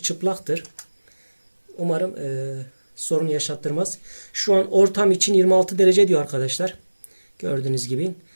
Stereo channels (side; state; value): both; inverted; correlation -1.00